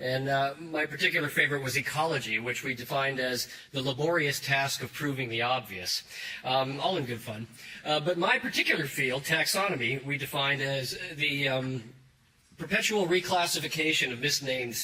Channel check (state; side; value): identical; both; correlation 1.00